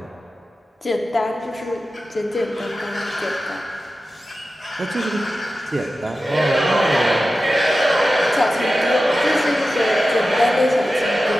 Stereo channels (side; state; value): both; normal; correlation 0.94